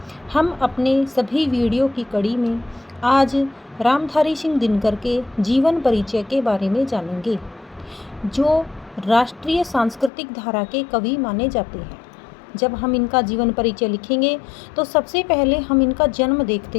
हम अपने सभी वीडियो की कड़ी में आज रामधारी सिंह दिनकर के जीवन परिचय के बारे में जानेंगे, जो राष्ट्रीय सांस्कृतिक धारा के कवि माने जाते हैं। जब हम इनका जीवन परिचय लिखेंगे तो सबसे पहले हम इनका जन्म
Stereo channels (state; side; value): drops out; right; at 10.1 s